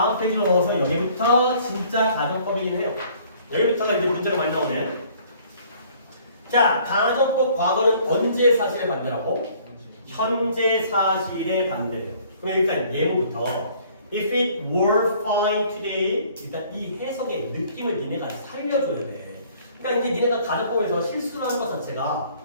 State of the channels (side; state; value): both; inverted; correlation -0.57